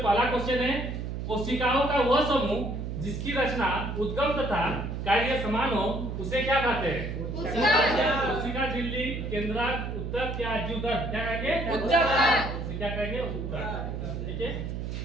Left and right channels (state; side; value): noise; right; hum, 5 dB below the sound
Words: क्वेश्चन है, कोशिकाओं का वह समूह जिसकी रचना उद्गम तथा कार्य समान हो उसे क्या कहते हैं? कोशिका, झिल्ली, केंद्रक, उत्तक या जीवदर? क्या कहेंगे? उत्तक। क्या कहेंगे? उत्तक। ठीक है।